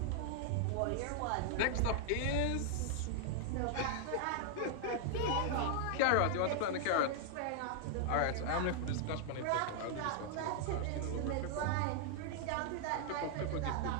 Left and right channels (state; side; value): different; both; correlation -0.01